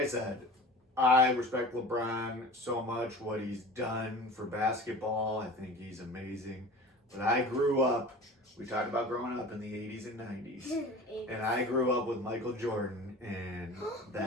said, I respect LeBron so much, what he's done for basketball. I think he's amazing. But I grew up, we talked about growing up in the 80s and 90s. And I grew up with Michael Jordan, and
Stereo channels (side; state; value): both; normal; correlation 0.38